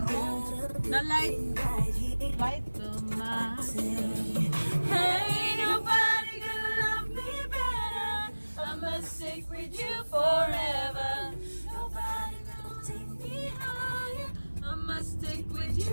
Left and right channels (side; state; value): both; inverted; correlation -1.00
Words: light to my hey, nobody gonna love me better. I must stick with you forever. Nobody gonna take me higher. I must stick with